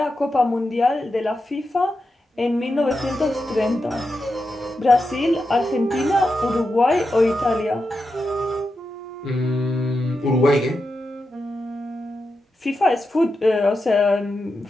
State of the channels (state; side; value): normal; both; correlation 0.88